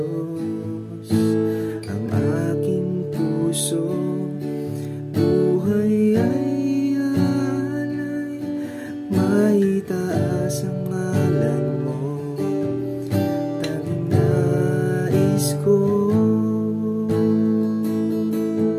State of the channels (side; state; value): both; identical; correlation 1.00